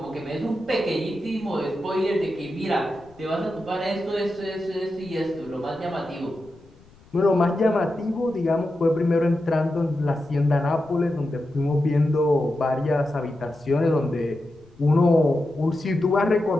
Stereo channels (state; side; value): noise; left; rumble, 27 dB below the sound